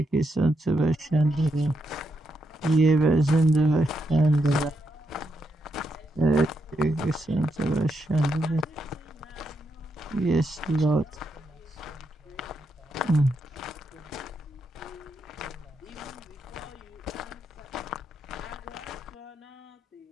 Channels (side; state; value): both; normal; correlation 0.82